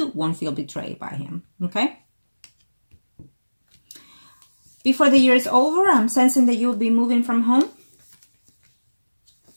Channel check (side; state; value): both; inverted; correlation -1.00